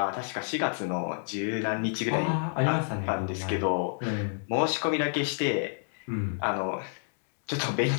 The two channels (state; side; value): silent; right; digital silence